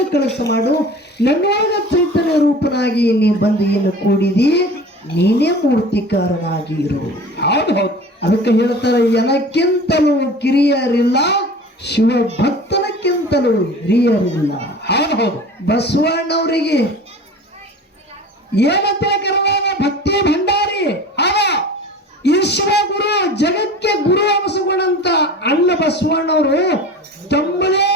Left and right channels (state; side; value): normal; both; correlation 0.39